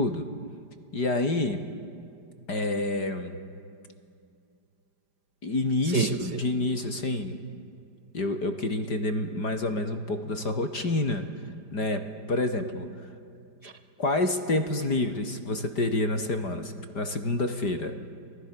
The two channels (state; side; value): late; right; 5.0 ms